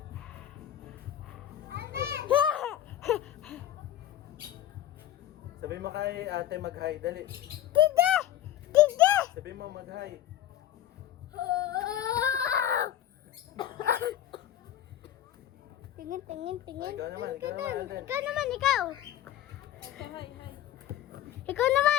Sabi mo kay ate mag-hi. Dali. Tiga! Tiga! Sabi mo mag-hi. Tingin. Ikaw naman, Alden. Ikaw naman, ikaw. Okay, hi. Ikaw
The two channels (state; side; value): quieter; right; 11.9 dB